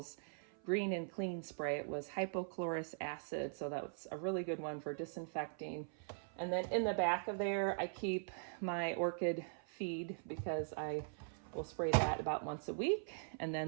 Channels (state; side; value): silent; left; 50 dB below the other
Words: green and clean spray. It was hypochlorous acid, so that's a really good one for disinfecting. And then in the back of there, I keep my orchid feed because I will spray that about once a week. And